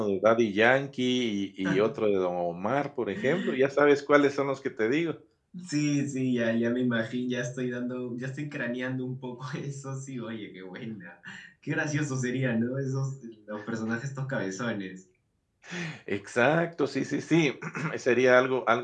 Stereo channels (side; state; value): both; identical; correlation 1.00